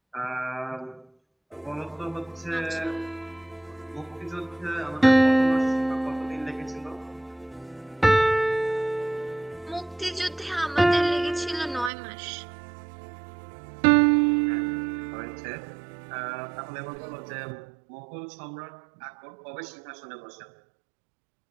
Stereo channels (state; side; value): drops out; left; at 11.9 s